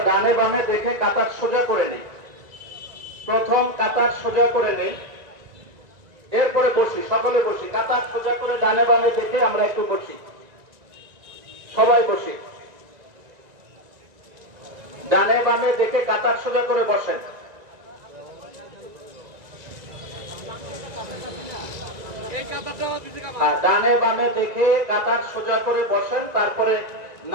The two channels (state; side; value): late; left; 1.9 ms